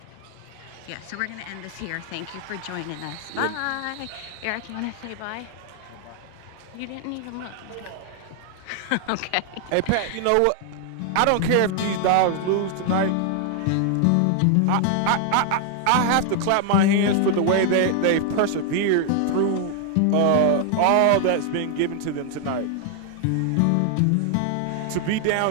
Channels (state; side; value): different; both; correlation 0.00